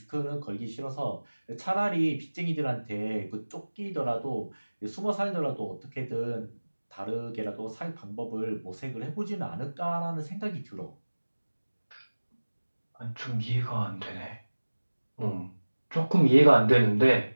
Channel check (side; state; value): both; inverted; correlation -1.00